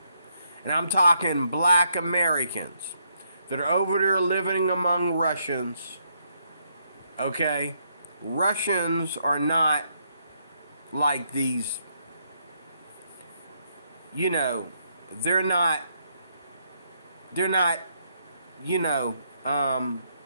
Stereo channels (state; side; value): inverted; both; correlation -0.75